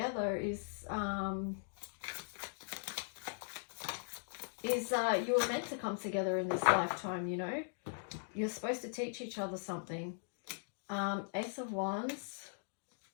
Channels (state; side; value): silent; right; digital silence